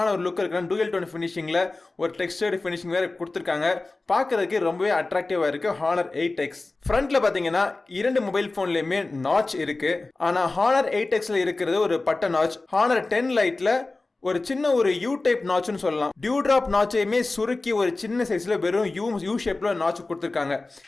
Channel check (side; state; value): right; quieter; 3.3 dB